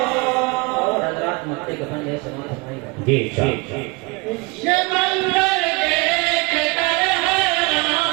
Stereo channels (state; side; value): quieter; left; 27.3 dB